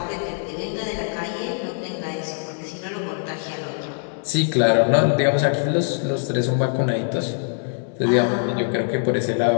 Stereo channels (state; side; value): silent; right; 64 dB below the other